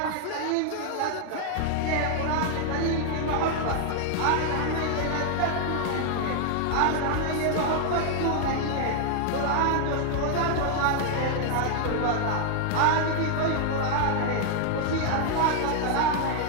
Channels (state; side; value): different; both; correlation 0.00